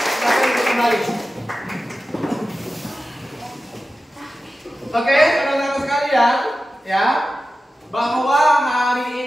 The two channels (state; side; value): normal; both; correlation 0.93